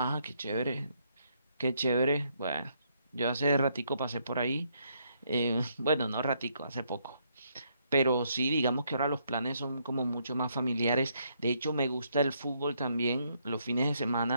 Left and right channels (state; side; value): inverted; both; correlation -0.73